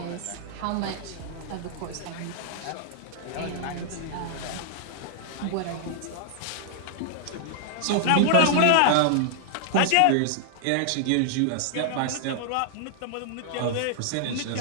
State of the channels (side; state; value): both; different; correlation -0.01